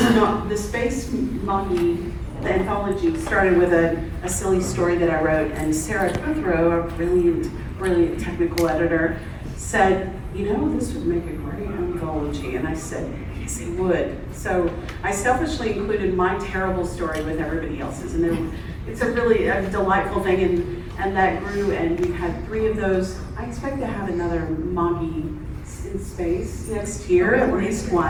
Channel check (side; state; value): both; identical; correlation 1.00